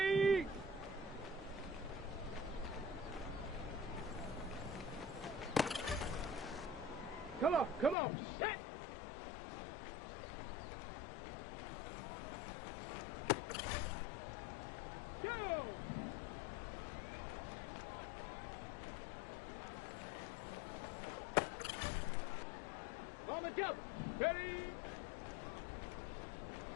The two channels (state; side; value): drops out; right; at 8.0 s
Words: Come on, set! Go! On the double, ready?